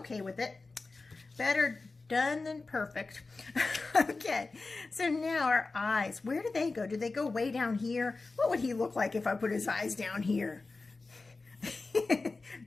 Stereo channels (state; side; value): quieter; right; 3.7 dB